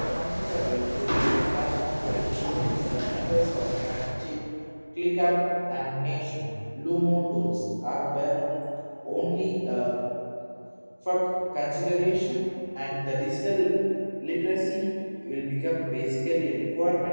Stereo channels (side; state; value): both; inverted; correlation -1.00